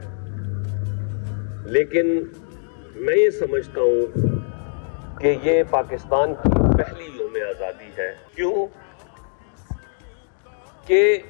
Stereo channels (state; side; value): silent; right; digital silence